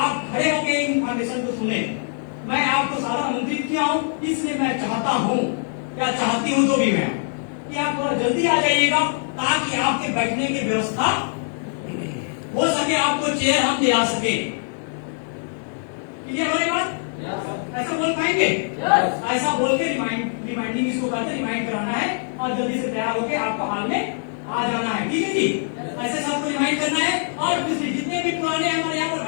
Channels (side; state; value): right; silent; digital silence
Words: खड़े होकर इन्फॉर्मेशन को सुने। मैं आपको सारा आमंत्रित किया हूं, इसलिए मैं चाहता हूं, या चाहती हूं जो भी मैं, कि आप थोड़ा जल्दी आ जाइएगा, ताकि आपके बैठने की व्यवस्था हो सके, आपको चेयर हम दिला सके। क्लियर हमारी बात? ऐसा बोल पाएंगे? ऐसा बोल के रिमाइंडिंग इसको करते, रिमाइंड कराना है। और जल्दी से तैयार होकर आपको हाल में आ जाना है। ठीक है जी, ऐसे सबको रिमाइंड करना है। और दूसरी जितने भी पुराने हमारे यहाँ पर